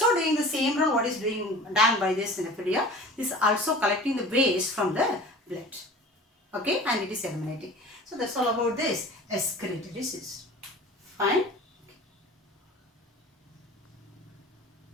doing the same role what is done by this nephridia. This is also collecting the waste from the blood. Okay, and it is eliminating. So that's all about this excretory system. Fine.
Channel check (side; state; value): both; normal; correlation 0.41